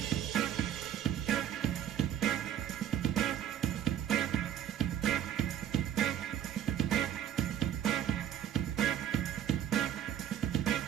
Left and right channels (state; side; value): quieter; left; 10.3 dB